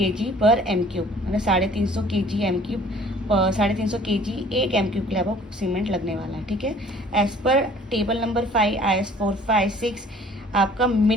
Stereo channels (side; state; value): both; normal; correlation 0.53